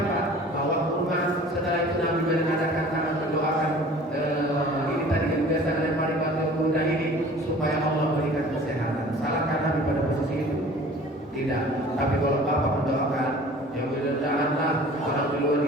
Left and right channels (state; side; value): normal; both; correlation 0.46